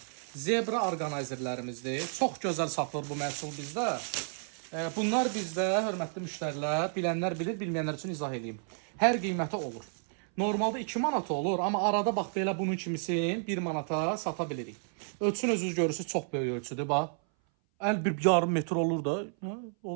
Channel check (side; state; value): left; silent; 57 dB below the other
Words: Zebra orqanayzerlərimizdir. Çox gözəl satılır bu məhsul bizdə. Bunlar bizdə, hörmətli müştərilər, bilənlər bilir, bilməyənlər üçün izah eləyim. Hər qiyməti olur. Normalda 2 manata olur, amma arada bax belə bunun kimisin 1 manata sata bilirik. Ölçün özünüz görürsünüz, çox böyük ölçüdür, bax. Bir yarım metr olur da,